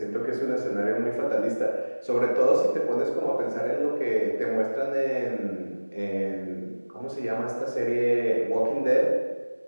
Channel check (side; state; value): both; inverted; correlation -1.00